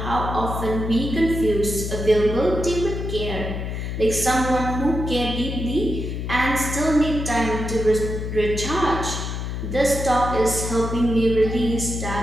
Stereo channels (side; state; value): left; noise; hum, 4 dB below the sound